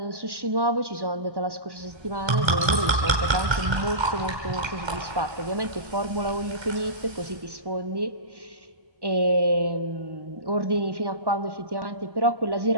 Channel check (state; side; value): late; left; 1.3 ms